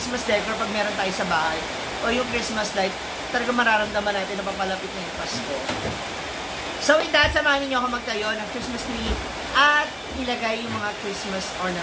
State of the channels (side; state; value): both; identical; correlation 1.00